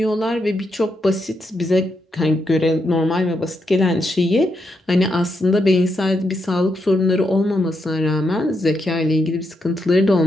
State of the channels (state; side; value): normal; both; correlation 0.82